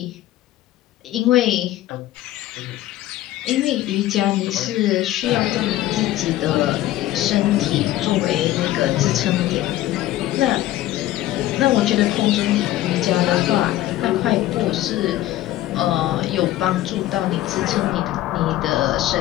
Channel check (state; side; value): quieter; right; 14.6 dB